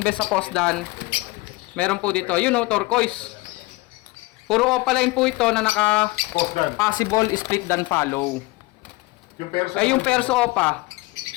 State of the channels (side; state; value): right; quieter; 22.7 dB